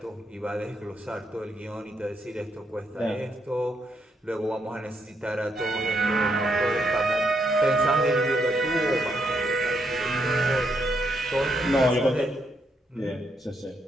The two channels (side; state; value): both; normal; correlation 0.77